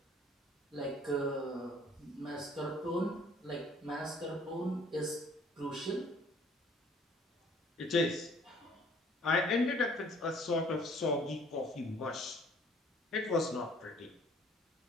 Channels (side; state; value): both; normal; correlation 0.56